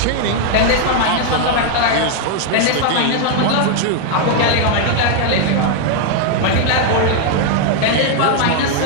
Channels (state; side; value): different; both; correlation 0.00